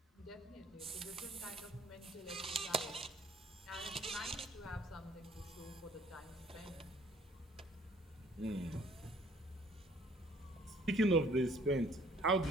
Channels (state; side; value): normal; both; correlation 0.58